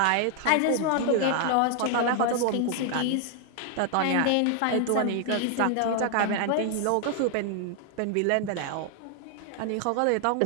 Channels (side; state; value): both; different; correlation 0.00